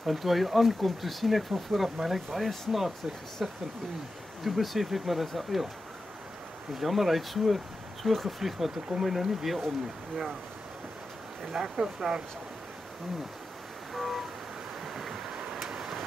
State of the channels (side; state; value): both; normal; correlation 0.91